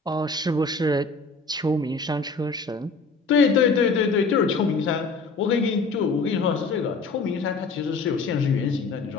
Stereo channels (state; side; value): quieter; right; 4.0 dB